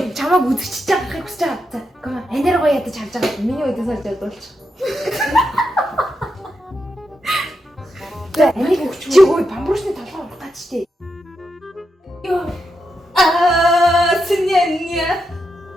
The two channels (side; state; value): both; normal; correlation 0.85